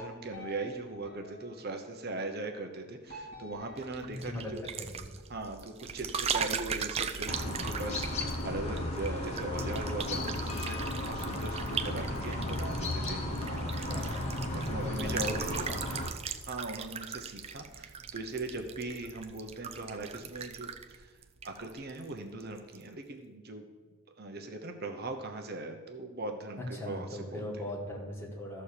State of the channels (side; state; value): both; normal; correlation 0.27